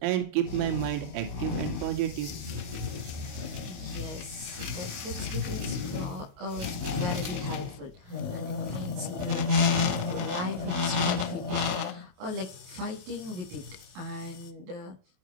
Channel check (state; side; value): late; left; 28 ms